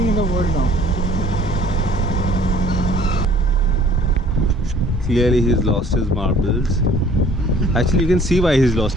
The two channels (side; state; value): both; normal; correlation 0.54